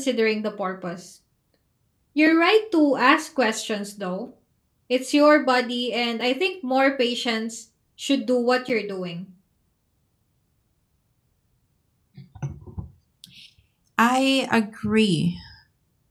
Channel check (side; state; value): both; identical; correlation 1.00